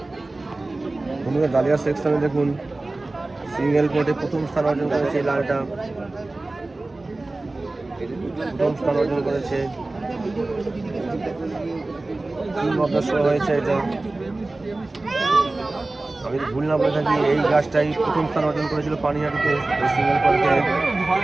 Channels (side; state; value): left; quieter; 3.0 dB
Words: বন্ধুরা ডালিয়া সেকশনে দেখুন সিঙ্গেল কোর্টে প্রথম স্থান অর্জন করেছে এই লালটা, প্রথম স্থান অর্জন করেছে। হয়েছে এটা, আমি যদি ভুল না বলে থাকি এই গাছটাই প্রথম স্থান অর্জন করেছিল পানিহাটিতে এই সিঙ্গেল কোর্টে।